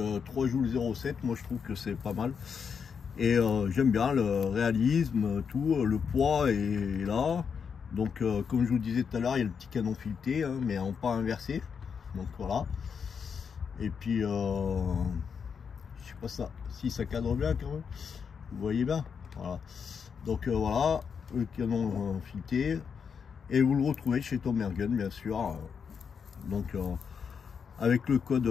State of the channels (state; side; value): quieter; right; 6.5 dB